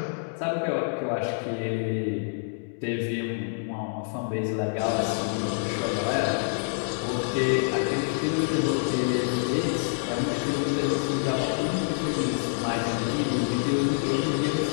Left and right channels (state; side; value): silent; right; digital silence